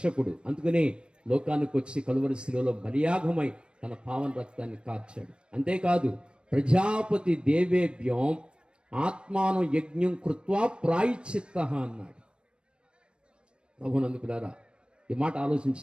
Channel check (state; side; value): late; left; 0.056 ms